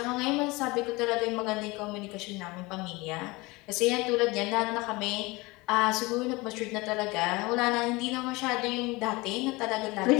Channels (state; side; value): quieter; right; 23.4 dB